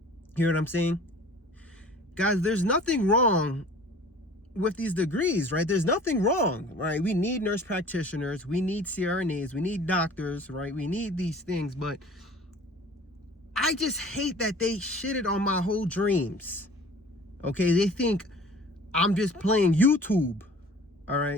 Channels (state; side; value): normal; both; correlation 0.46